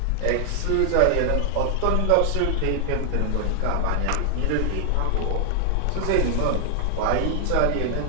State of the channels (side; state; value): both; different; correlation 0.00